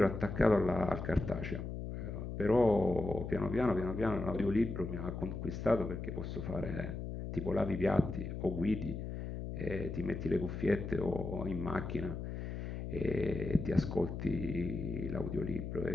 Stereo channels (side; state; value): left; noise; hum, 6 dB below the sound